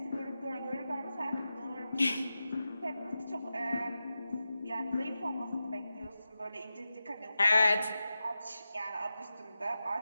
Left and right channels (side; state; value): both; inverted; correlation -0.92